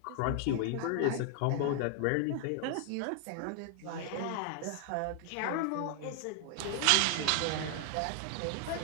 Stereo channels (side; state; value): both; different; correlation 0.00